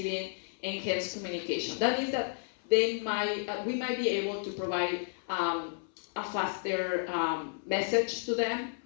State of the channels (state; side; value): silent; right; 56 dB below the other